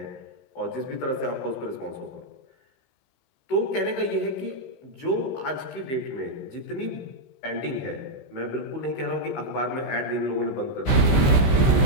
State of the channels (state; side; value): late; right; 15 ms